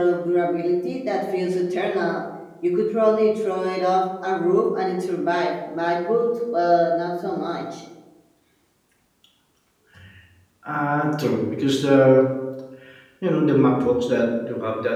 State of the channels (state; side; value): identical; both; correlation 1.00